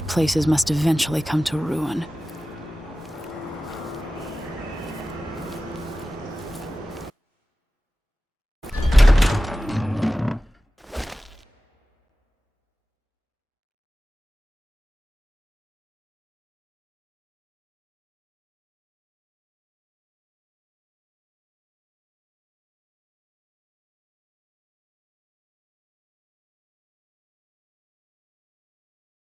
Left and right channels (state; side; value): normal; both; correlation 0.95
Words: places must eventually come to ruin.